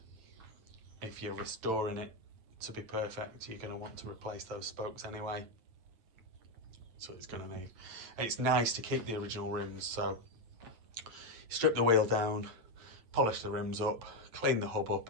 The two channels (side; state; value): left; late; 9.1 ms